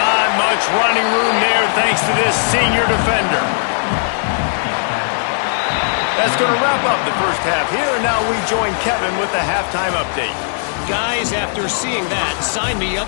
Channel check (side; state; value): right; silent; 68 dB below the other